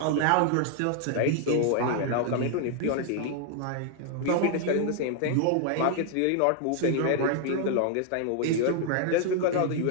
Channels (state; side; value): different; both; correlation 0.00